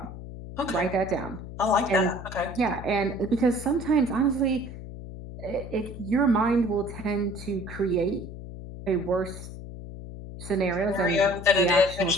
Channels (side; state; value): left; noise; hum, 11 dB below the sound